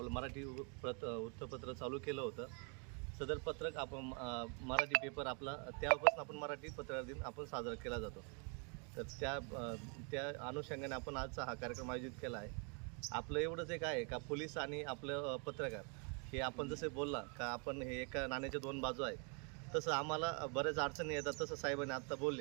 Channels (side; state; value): left; quieter; 36.8 dB